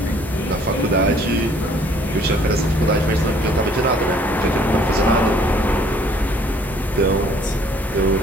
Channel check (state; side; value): normal; both; correlation 0.59